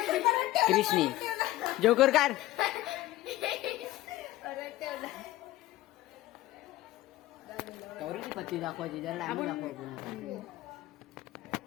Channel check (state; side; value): quieter; right; 16.4 dB